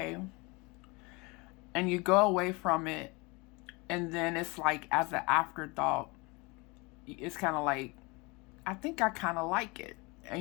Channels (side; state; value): right; quieter; 26.9 dB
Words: And you go away from it and then it's like as an afterthought, it's kind of like, I think I kind of like it.